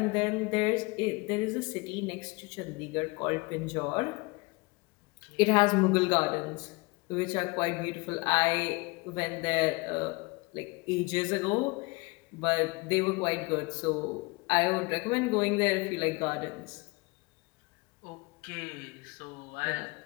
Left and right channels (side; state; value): right; quieter; 25.8 dB